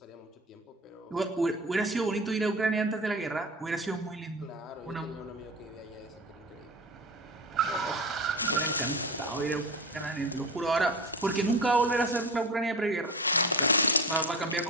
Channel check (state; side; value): normal; both; correlation 0.28